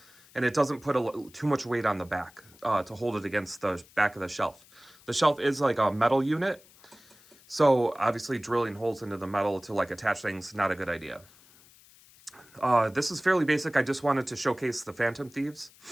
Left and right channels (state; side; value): noise; left; hiss, 26 dB below the sound